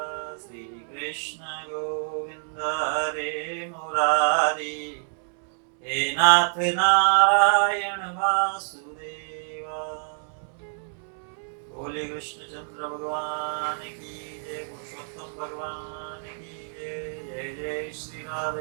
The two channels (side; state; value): left; silent; digital silence